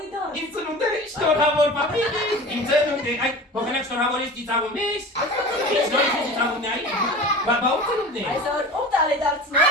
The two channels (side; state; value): both; normal; correlation 0.35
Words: դար։ Իմ ծնունդերը շնորհավոր պապիկ, իմ ծնունդը, այ փոխանակ շնորհավորից ծիծաղում ես, ինչ նորից ծիծաղումն է այ, բաբա ու ծնունդն է։ Այսօր ով տարի դարձնող։